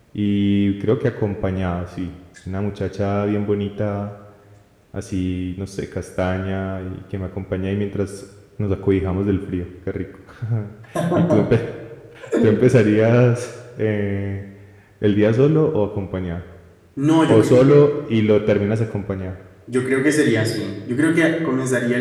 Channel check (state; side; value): identical; both; correlation 1.00